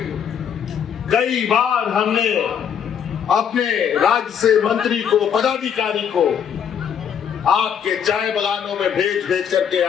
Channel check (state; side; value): quieter; right; 8.1 dB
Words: कई बार हमने अपने राज्य से मंत्री को, पदाधिकारी को आपके चाय बागानों में भेज करके